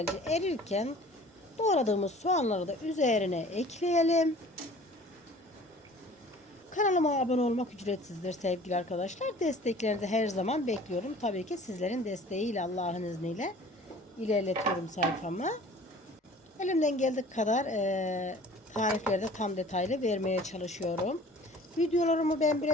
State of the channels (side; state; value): both; normal; correlation 0.47